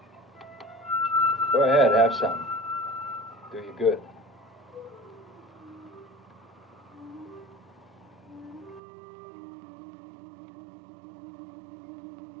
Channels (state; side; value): drops out; left; at 8.8 s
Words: Go ahead, have some. Do you good.